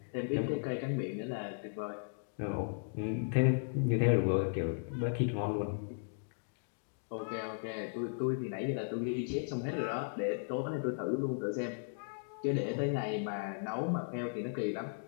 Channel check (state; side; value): silent; right; digital silence